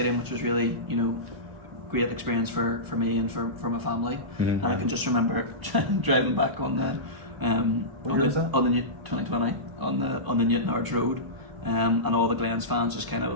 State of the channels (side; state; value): left; late; 1.0 ms